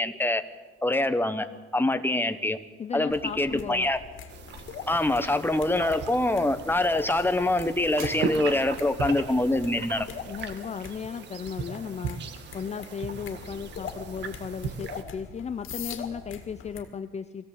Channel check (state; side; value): normal; both; correlation 0.68